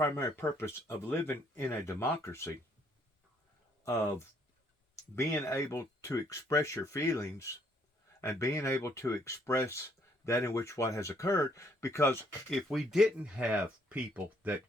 purpose of living in a democracy, of being able to express your feelings and being able to express that in which what has occurred. Because if we didn't have people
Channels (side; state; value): both; normal; correlation 0.67